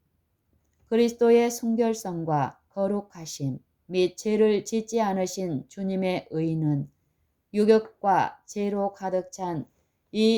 그리스도의 순결성과 거룩하심 및 죄를 짓지 않으신 주님의 의는 유격과 죄로 가득 찬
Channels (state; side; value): identical; both; correlation 1.00